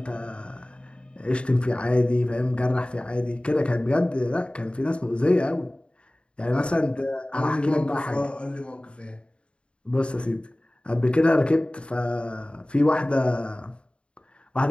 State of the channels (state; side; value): late; right; 0.056 ms